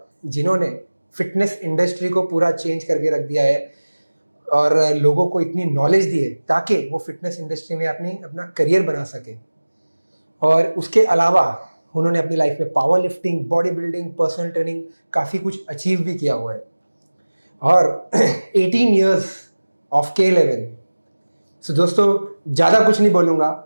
जिन्होंने फिटनेस इंडस्ट्री को पूरा चेंज करके रख दिया है और लोगों को इतनी नॉलेज दी है ताकि वो फिटनेस इंडस्ट्री में अपना करियर बना सके। और उसके अलावा उन्होंने अपनी लाइफ में power lifting, body building, personal training काफ़ी कुछ अचीव भी किया हुआ है। और 18 ईयर्स ऑफ K11। सो दोस्तों, ज़्यादा कुछ नहीं बोलूँगा।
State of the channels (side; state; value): both; inverted; correlation -1.00